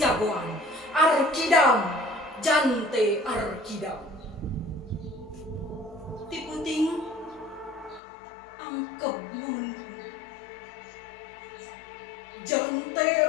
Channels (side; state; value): right; drops out; at 8.0 s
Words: Arkidam Jante Arkidam tiputing angkep nun Jante